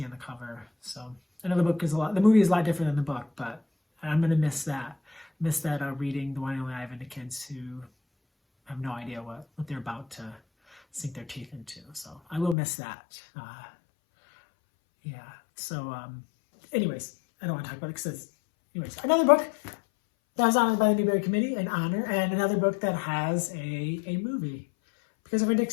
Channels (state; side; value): drops out; right; at 12.6 s